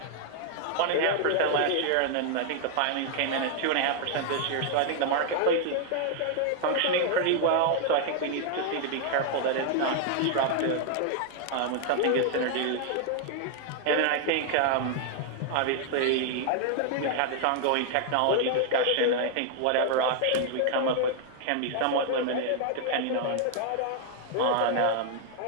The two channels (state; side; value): different; both; correlation 0.00